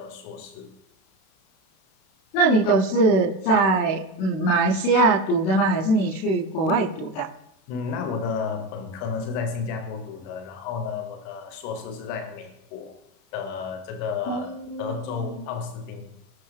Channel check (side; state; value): right; late; 32 ms